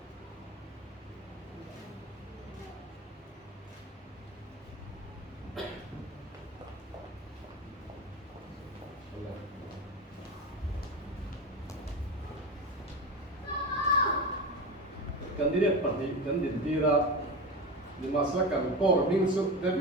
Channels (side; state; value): both; normal; correlation 0.23